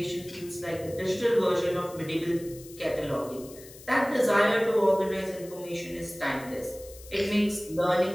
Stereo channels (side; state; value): left; noise; hiss, 19 dB below the sound